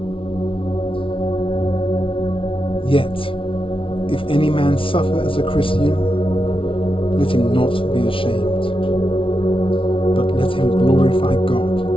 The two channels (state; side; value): late; right; 0.25 ms